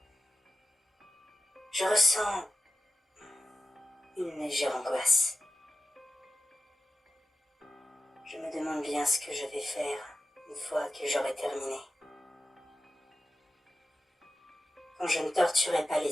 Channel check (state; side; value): normal; both; correlation 0.94